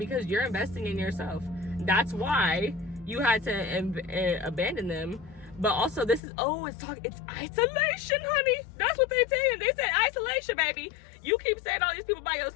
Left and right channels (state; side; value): drops out; right; at 6.2 s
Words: you're investing in yourself. That's why you had to abandon them. But also, this is, it's isolation, honey. That's what they're saying. They said isolation, baby. You keep saying all these people by